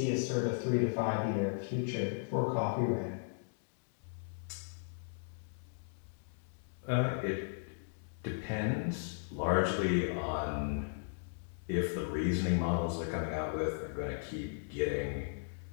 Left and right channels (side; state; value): right; silent; digital silence